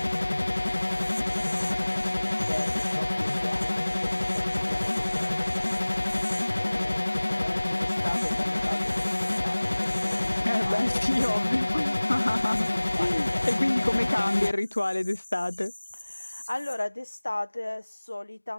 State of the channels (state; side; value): inverted; both; correlation -1.00